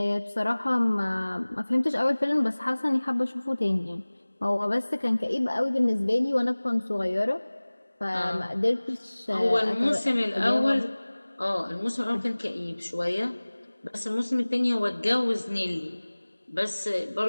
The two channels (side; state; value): both; inverted; correlation -1.00